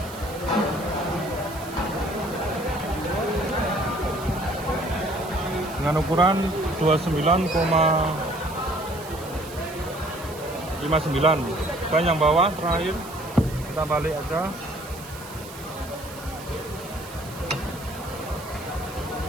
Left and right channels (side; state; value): right; noise; hiss, 16 dB below the sound